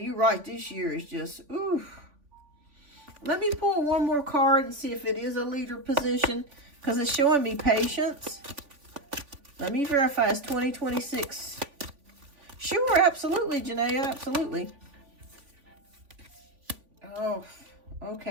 you're right. This year is just, oof. Let me pull one more card and see if it is a leader position because it's showing me patience. Let me verify it's 2026. Sure, absolutely, Janaea, absolutely. Oh,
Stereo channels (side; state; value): left; late; 3.5 ms